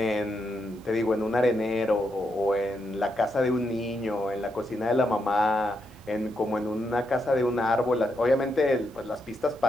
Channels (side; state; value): both; normal; correlation 0.81